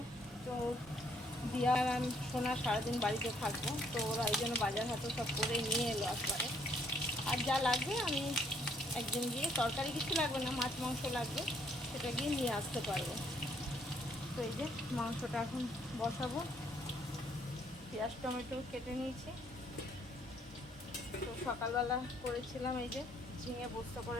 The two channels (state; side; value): normal; both; correlation 0.67